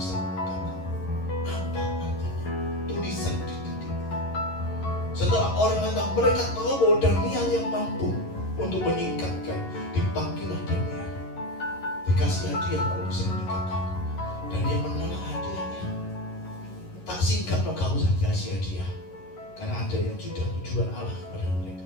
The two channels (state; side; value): late; right; 11 ms